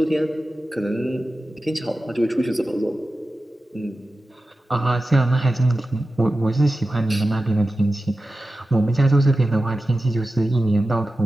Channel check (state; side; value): normal; both; correlation 0.93